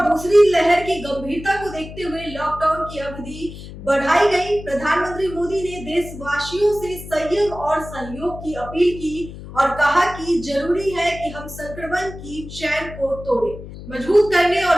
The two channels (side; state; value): left; noise; hum, 13 dB below the sound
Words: दूसरी लहर की गंभीरता को देखते हुए लॉकडाउन की अवधि बढ़ाई गई। प्रधानमंत्री मोदी ने देशवासियों से संयम और सहयोग की अपील की और कहा कि जरूरी है कि हम संक्रमण की चैन को तोड़ें, मजबूत करने